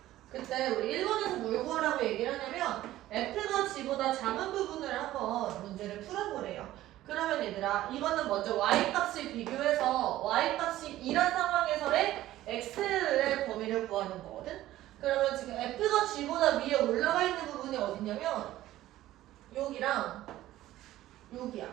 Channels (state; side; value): quieter; left; 14.8 dB